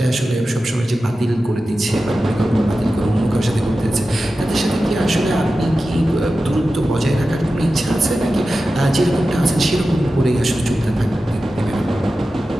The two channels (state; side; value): normal; both; correlation 0.93